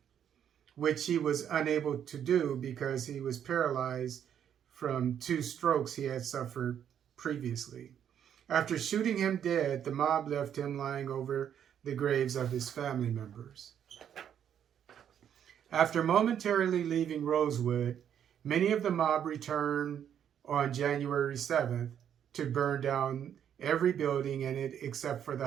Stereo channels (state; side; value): quieter; left; 9.2 dB